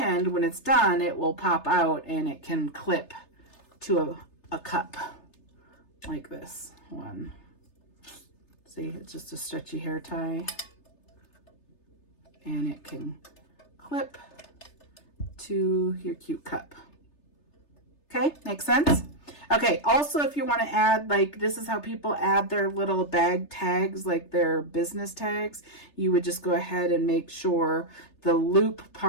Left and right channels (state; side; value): late; right; 3.3 ms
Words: when it's done, it will pop out and it can clip to a cup like this one. See, it's just a stretchy hair tie, and it can clip to your cute cup. Okay, makes sense? Okay, also if you want to add, like, this is how people add their little bag tags, like their business tags. You would just go ahead and make sure the loop